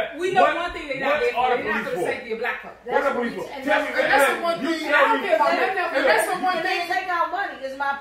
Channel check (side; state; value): both; identical; correlation 1.00